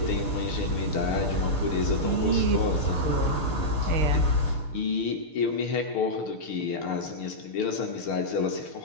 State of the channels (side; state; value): right; late; 6.6 ms